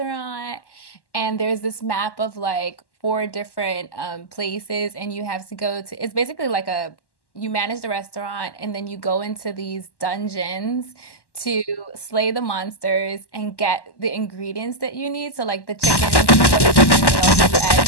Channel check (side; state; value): right; late; 1.1 ms